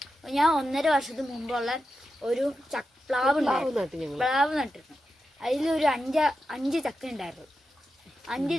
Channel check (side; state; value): both; normal; correlation 0.89